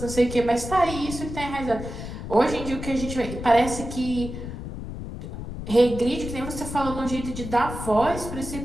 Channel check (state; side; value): noise; left; rumble, 8 dB below the sound